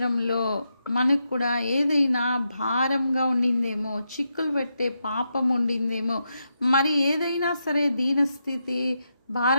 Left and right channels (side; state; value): both; inverted; correlation -0.85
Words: మనకు కూడా ఏదైనా భారంగా ఉండిందేమో, చిక్కులు పెట్టే పాపం ఉండిందేమో, మరి ఏదైనా సరే దీనస్థితి,